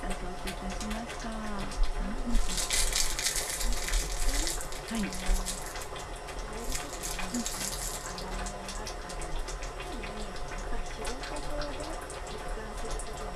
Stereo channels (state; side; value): identical; both; correlation 1.00